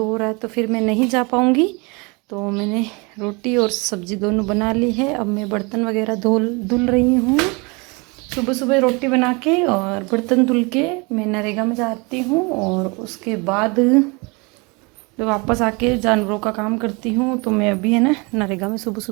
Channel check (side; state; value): left; quieter; 28.7 dB